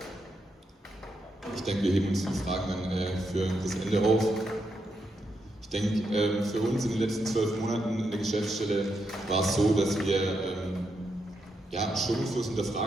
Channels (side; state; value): both; normal; correlation 0.82